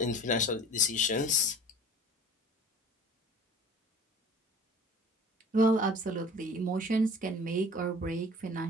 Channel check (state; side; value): normal; both; correlation 0.43